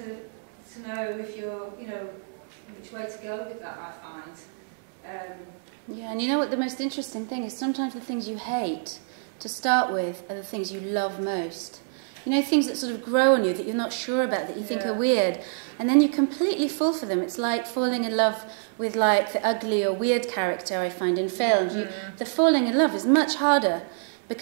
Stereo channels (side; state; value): left; silent; 60 dB below the other